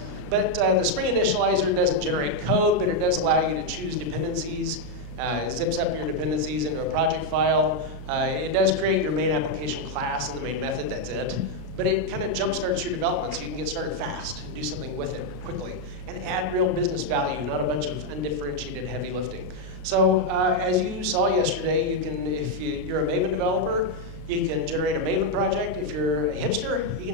But the Spring Initializer doesn't generate code, but it does allow you to choose dependencies. It zips up your dependencies into a project file. It does create your main application class and the main method, that's it. But it kind of jumpstarts your development so you can get started fast and do something with it quickly and add real business value, not a bunch of undifferentiated heavy lifting. So as you saw yesterday, you can, if you're a Maven developer, you can generate a Maven project. If you're a hipster, you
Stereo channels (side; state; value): left; late; 33 ms